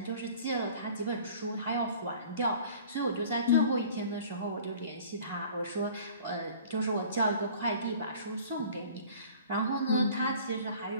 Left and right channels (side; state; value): both; inverted; correlation -0.47